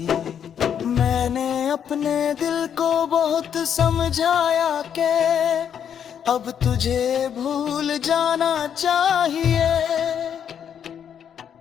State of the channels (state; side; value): quieter; right; 8.5 dB